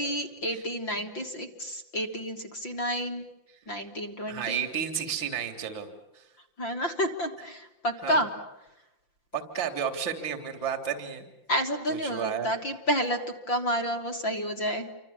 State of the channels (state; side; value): late; right; 5.8 ms